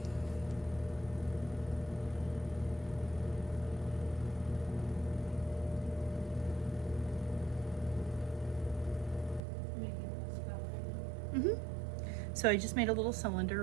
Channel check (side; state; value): left; drops out; at 9.4 s